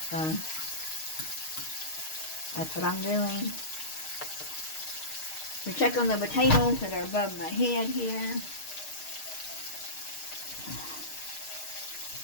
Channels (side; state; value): right; late; 6.5 ms